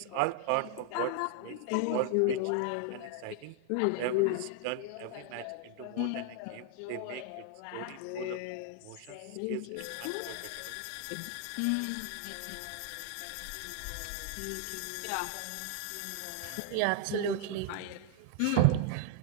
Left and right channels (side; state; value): both; different; correlation 0.00